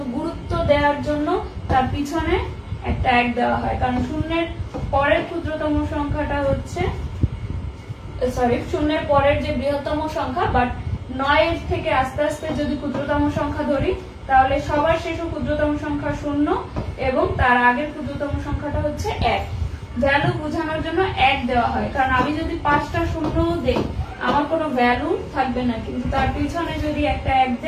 গুরুত্ব দেওয়ার জন্য তার পিছনে একটা 1 দেওয়া হয়, কারণ 0-এর পরের ক্ষুদ্রতম সংখ্যাটা হচ্ছে, 0-এর পরের যে বৃহত্তম সংখ্যা, বাট 9 থেকে আস্তে আস্তে যদি ক্ষুদ্রতম সংখ্যা ধরি তাহলে সবার শেষ ক্ষুদ্রতম সংখ্যা 0 এবং তার আগের ক্ষুদ্রতম সংখ্যাটা হচ্ছে 1। ভ্যালু বোঝানোর জন্য 1 দেওয়া হয়, কারণ আমি যদি 5টা 0 দেই আমার কোনো ভ্যালু থাকবে না, কিন্তু তার পিছনে যদি একটা 1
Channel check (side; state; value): both; identical; correlation 1.00